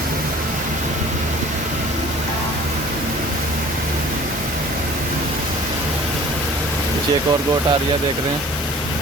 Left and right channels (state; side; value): normal; both; correlation 0.48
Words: एक और गोट आ रही है, देख रहे हैं,